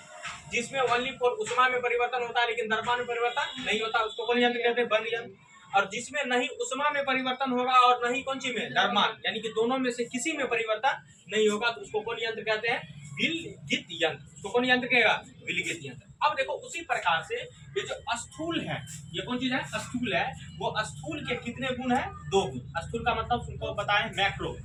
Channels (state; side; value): identical; both; correlation 1.00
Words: जिसमें ओनली फॉर उष्मा में परिवर्तन होता है लेकिन द्रव्यमान में परिवर्तन नहीं होता, उसको कौन यंत्र कहते हैं, बंद यंत्र। और जिसमें नहीं उष्मा में परिवर्तन होगा और नहीं कौन सी में, द्रव्यमान, यानी कि दोनों में से किसी में परिवर्तन नहीं होगा, तो उसको कौन यंत्र कहते हैं, विलगित यंत्र। उसको कौन यंत्र कहेगा, विलगित यंत्र। अब देखो उसी प्रकार से ये जो स्थूल है, ये कौन चीज है, स्थूल है, वो स्थूल के कितने गुण है, 2 गुण। स्थूल का मतलब तुमको बताएं मैक्रो,